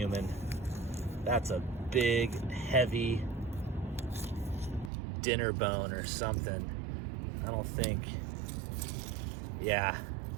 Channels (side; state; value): left; drops out; at 4.9 s